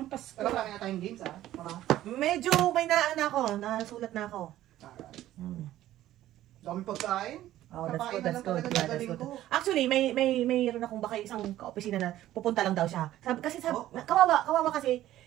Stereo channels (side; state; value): left; quieter; 13.8 dB